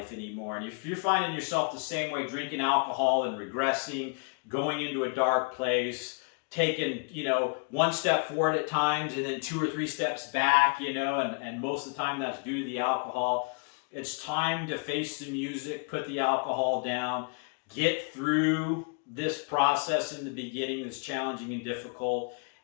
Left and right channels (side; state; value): right; quieter; 38.6 dB